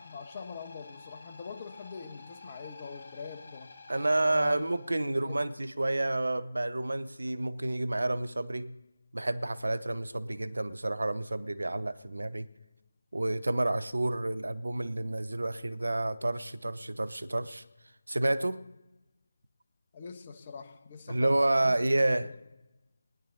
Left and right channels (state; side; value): inverted; both; correlation -0.98